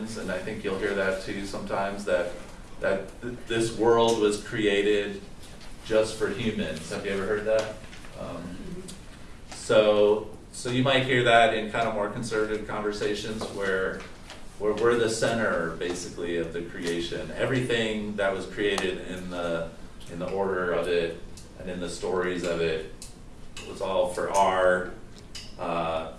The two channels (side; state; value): both; identical; correlation 1.00